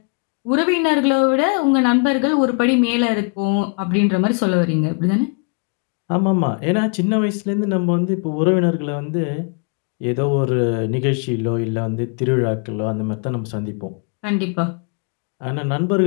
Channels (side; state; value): right; quieter; 35.4 dB